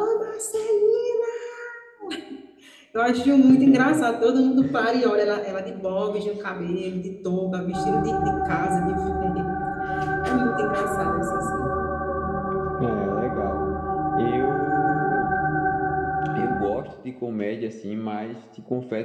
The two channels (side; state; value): both; identical; correlation 1.00